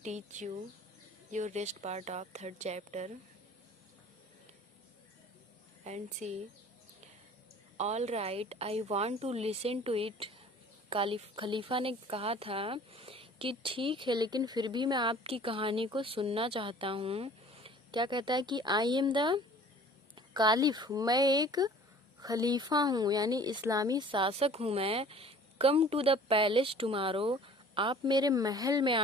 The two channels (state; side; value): normal; both; correlation 0.48